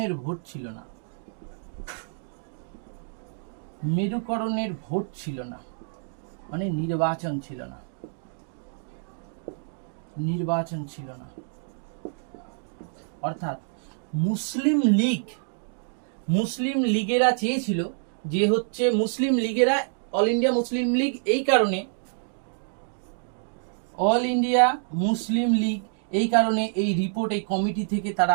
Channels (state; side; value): silent; left; digital silence